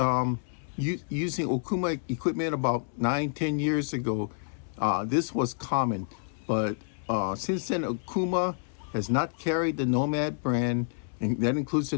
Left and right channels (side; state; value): right; silent; 59 dB below the other